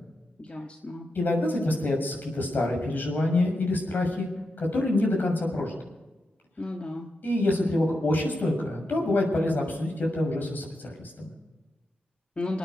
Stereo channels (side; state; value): both; normal; correlation 0.86